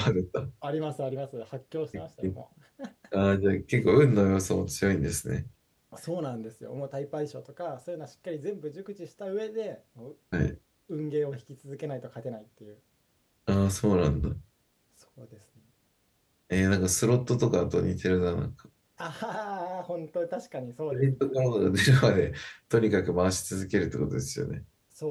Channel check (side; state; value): both; identical; correlation 1.00